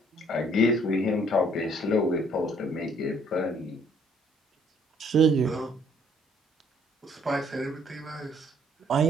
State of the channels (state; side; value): normal; both; correlation 0.63